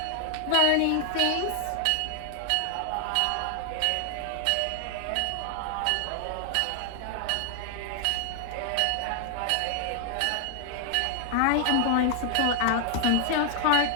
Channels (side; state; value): both; different; correlation 0.00